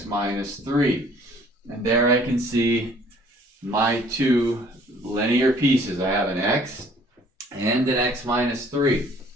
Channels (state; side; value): normal; both; correlation 0.57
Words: minus 3. And there I can see my two linear pieces. I have an x and an x minus 3.